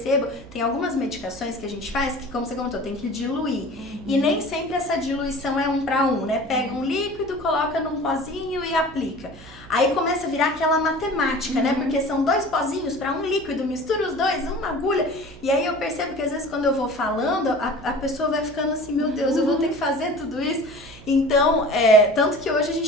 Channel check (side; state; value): right; noise; hum, 19 dB below the sound